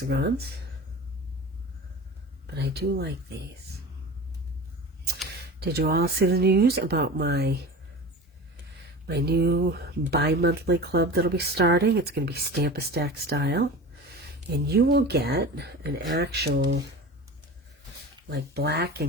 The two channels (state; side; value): normal; both; correlation 0.33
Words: but I do like these. Did you all see the news about my new bi-monthly club that'll be starting? It's going to be Stamp-A-Stack style, and you will get an actual like black